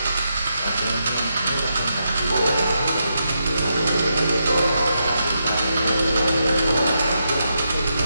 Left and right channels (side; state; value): both; inverted; correlation -0.83